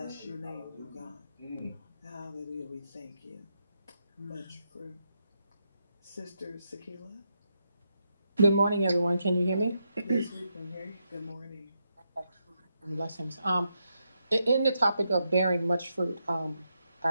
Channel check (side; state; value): both; inverted; correlation -0.83